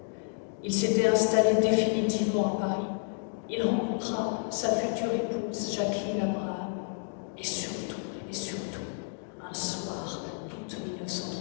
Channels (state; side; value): silent; right; 58 dB below the other